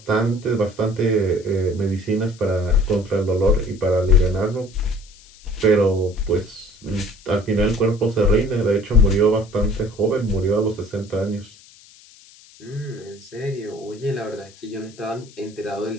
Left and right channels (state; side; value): noise; left; hiss, 24 dB below the sound